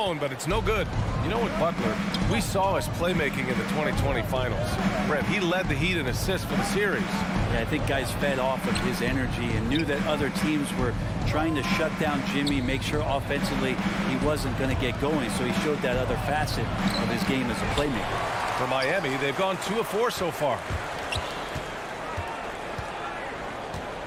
but it's no good. You know what, Butler, we saw his playmaking in the 2020 finals. Brett, he led the Heat in assists for the series. Yeah, I think guys fed off of his energy and knew that other teams were trying to shut down Jimmy, make sure offensively he wasn't going to get going, so he showed that other facet of his game as a playmaker. For Miami, they've gone 2 of 4 so far.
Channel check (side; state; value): both; identical; correlation 1.00